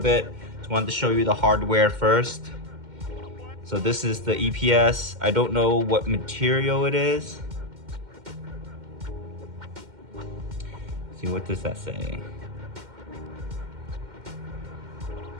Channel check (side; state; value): left; late; 2.1 ms